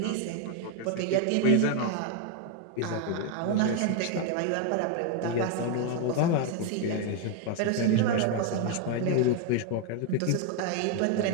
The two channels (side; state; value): both; different; correlation 0.01